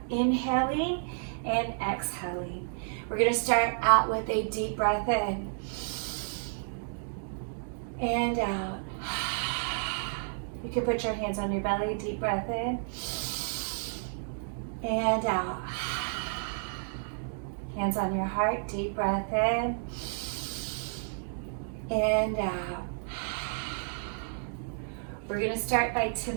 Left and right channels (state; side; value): silent; left; digital silence